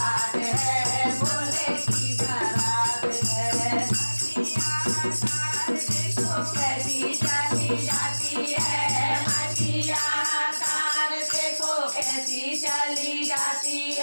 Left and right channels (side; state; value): both; inverted; correlation -1.00